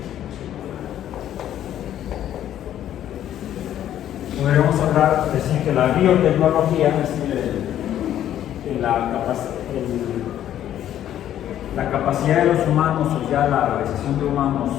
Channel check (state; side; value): quieter; right; 11.3 dB